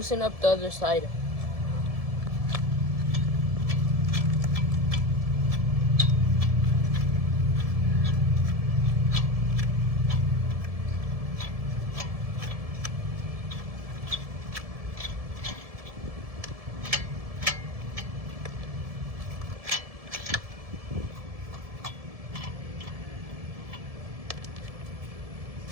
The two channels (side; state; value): left; late; 1.7 ms